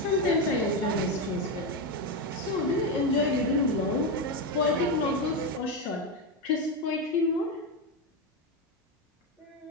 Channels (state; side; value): normal; both; correlation 0.10